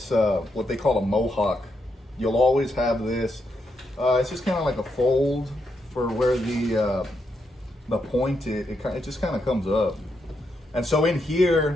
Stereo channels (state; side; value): normal; both; correlation 0.81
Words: what they call a mohawk. You'll always have this. It's just kind of like a fold for where the point it just kind of comes up. And so in